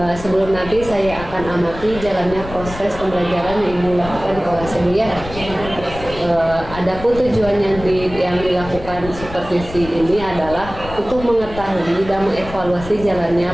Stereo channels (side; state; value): left; noise; rumble, 12 dB below the sound